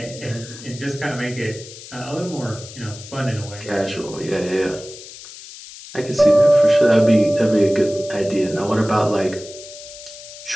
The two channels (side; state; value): left; noise; hiss, 15 dB below the sound